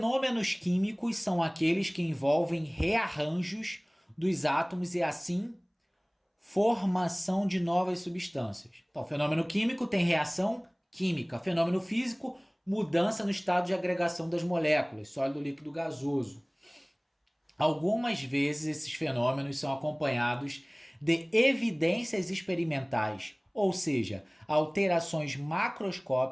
químicos são aqueles que envolvem rearranjos dos átomos e assim formação de novas substâncias. Então, fenômeno químico tem reação química. Fenômeno físico, mudança no estado de agregação das moléculas, sólido, líquido, gasoso. Algumas vezes esses fenômenos são acompanhados de evidências experimentais, ou seja, alterações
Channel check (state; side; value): identical; both; correlation 1.00